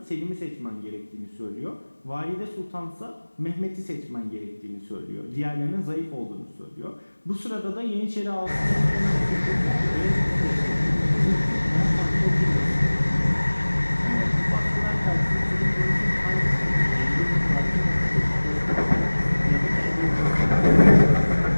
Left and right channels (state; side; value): inverted; both; correlation -1.00